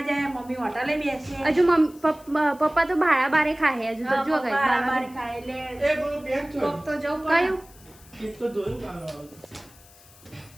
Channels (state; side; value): noise; left; hiss, 24 dB below the sound